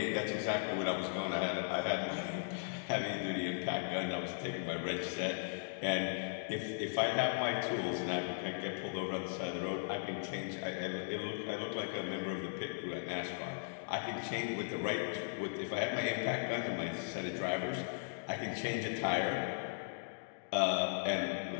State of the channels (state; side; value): silent; right; digital silence